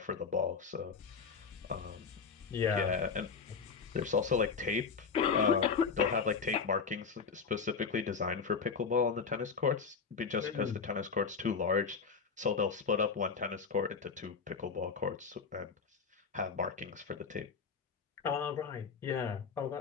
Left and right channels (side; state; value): right; quieter; 5.5 dB